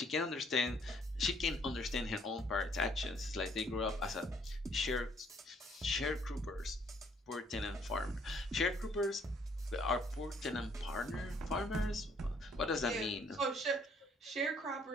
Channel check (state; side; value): normal; both; correlation 0.64